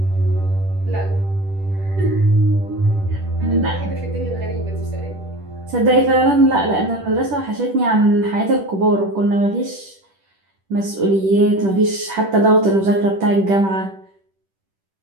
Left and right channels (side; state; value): left; late; 10 ms